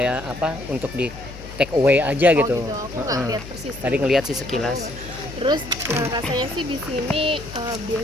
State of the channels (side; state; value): left; noise; hum, 15 dB below the sound